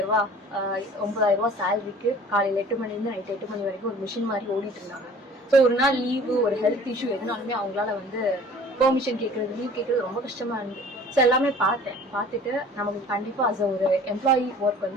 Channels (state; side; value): normal; both; correlation 0.48